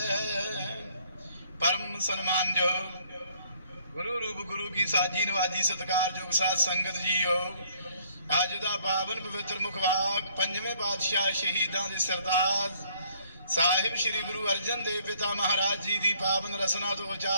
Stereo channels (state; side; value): inverted; both; correlation -0.63